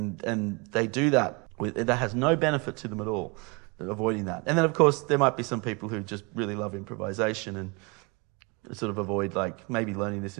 they do that. That has no benefit to them at all, avoiding that. And then, of course, there might be some people who just really love improvisation and sort of avoid maybe learning this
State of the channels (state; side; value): quieter; left; 29.7 dB